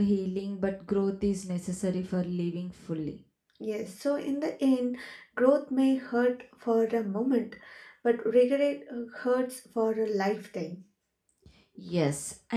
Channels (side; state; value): both; identical; correlation 1.00